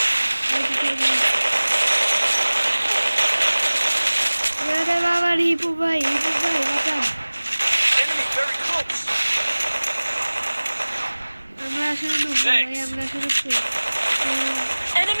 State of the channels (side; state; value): both; inverted; correlation -1.00